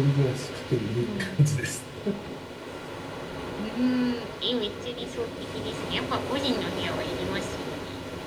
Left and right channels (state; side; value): identical; both; correlation 1.00